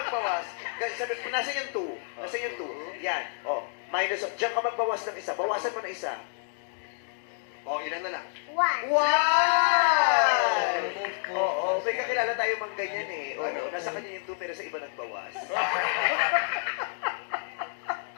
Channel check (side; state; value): right; silent; digital silence